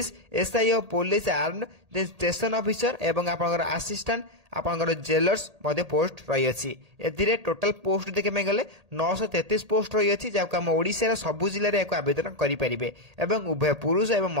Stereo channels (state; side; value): late; left; 1.8 ms